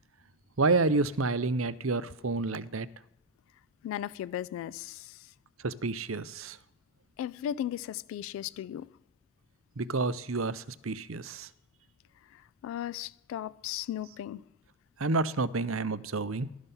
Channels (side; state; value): both; normal; correlation 0.01